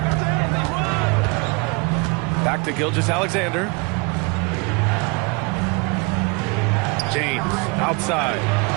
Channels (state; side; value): quieter; left; 30.0 dB